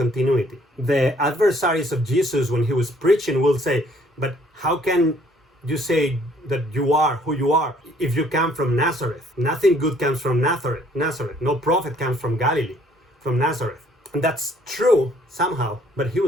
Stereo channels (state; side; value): normal; both; correlation 0.62